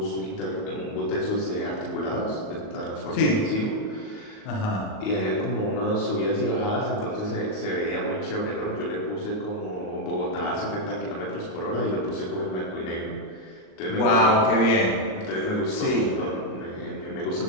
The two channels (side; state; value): right; late; 38 ms